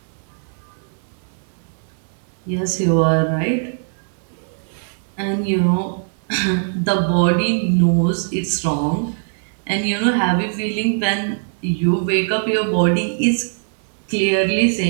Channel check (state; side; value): silent; left; 65 dB below the other